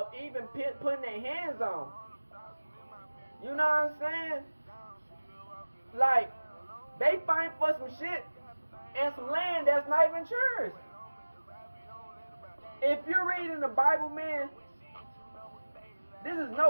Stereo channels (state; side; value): inverted; both; correlation -1.00